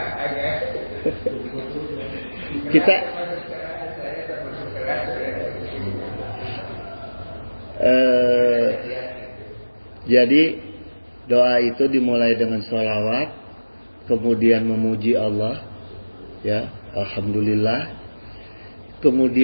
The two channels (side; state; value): both; inverted; correlation -1.00